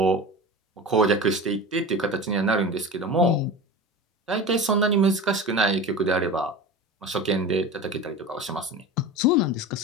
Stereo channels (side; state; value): both; normal; correlation 0.30